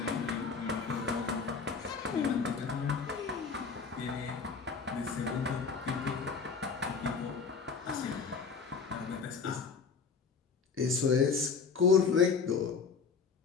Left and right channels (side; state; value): right; quieter; 5.4 dB